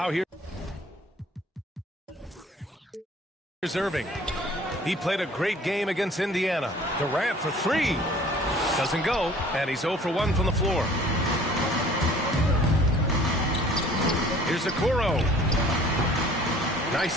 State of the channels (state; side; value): normal; both; correlation 0.51